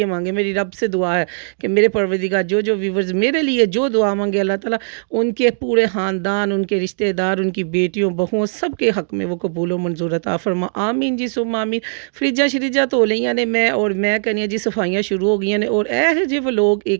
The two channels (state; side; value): silent; left; digital silence